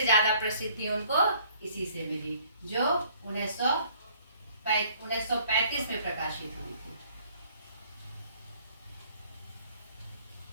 ज्यादा प्रसिद्धि उनको इसी से मिली, जो 1935 में प्रकाशित हुई थी।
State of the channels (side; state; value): both; inverted; correlation -0.59